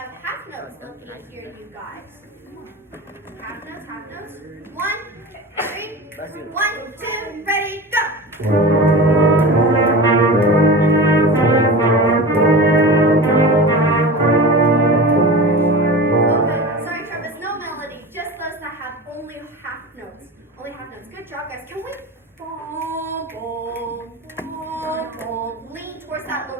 half notes, let me hear you guys. Half notes, half notes. 1, 3, 1, 2, ready, go. Okay, sorry Travis, no melody, just those that have only half notes. Only half notes. Good job, guys. Can we boom, boom, boom, boom, lean towards that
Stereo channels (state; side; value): normal; both; correlation 0.30